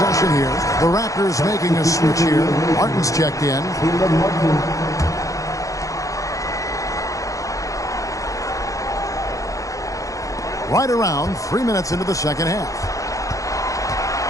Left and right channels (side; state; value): right; late; 0.16 ms